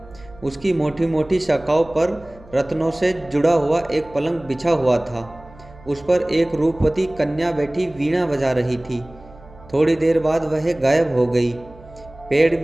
उसकी मोटी मोटी शाखाओं पर रत्नों से जुड़ा हुआ एक पलंग बिछा हुआ था। उस पर एक रूपवती कन्या बैठी वीणा बजा रही थी। थोड़ी देर बाद वह गायब हो गई। पेड़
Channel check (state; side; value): noise; right; hum, 22 dB below the sound